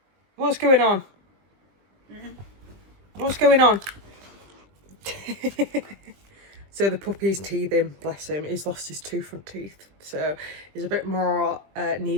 What's going on? What's going on? So the puppy's teething, bless him. He's lost his two front teeth, so he's a bit more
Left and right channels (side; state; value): left; late; 20 ms